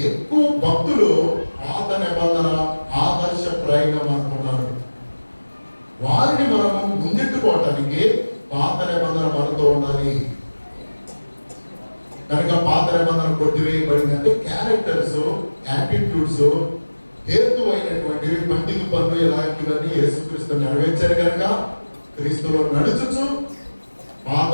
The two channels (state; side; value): inverted; both; correlation -1.00